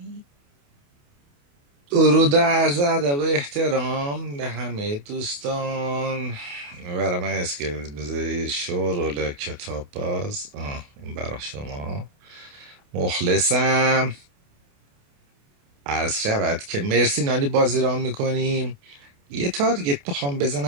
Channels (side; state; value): left; late; 28 ms